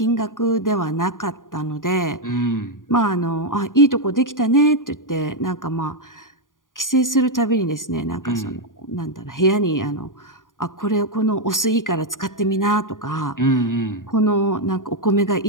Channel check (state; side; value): late; right; 0.89 ms